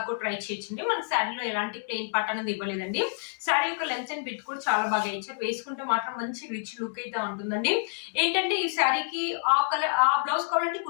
కూడా ట్రై చేయొచ్చండి. మన శారీలో ఎలాంటి ప్లెయిన్ పార్ట్ అనేది ఇవ్వలేదండి. శారీ యొక్క లెంత్ అండ్ బిట్ కూడా చాలా బాగా ఇచ్చారు. వేసుకుంటే మాత్రం మంచి రిచ్ లుక్ అయితే ఉంటుందండి. ఏంటంటే ఈ శారీకి ఆ కలర్ ఆ బ్లౌజ్ కావాలంటే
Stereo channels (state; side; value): silent; right; digital silence